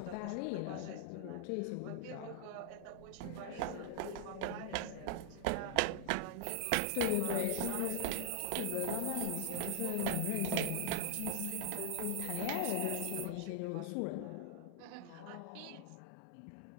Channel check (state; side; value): different; both; correlation -0.01